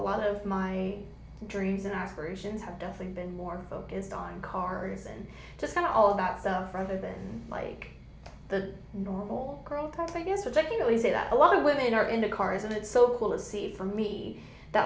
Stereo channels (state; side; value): identical; both; correlation 1.00